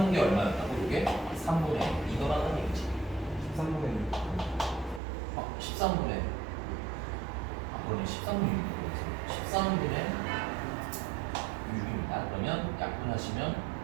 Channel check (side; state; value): left; drops out; at 5.0 s